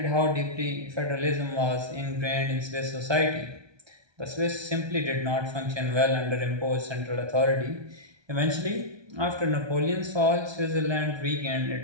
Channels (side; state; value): left; late; 1.2 ms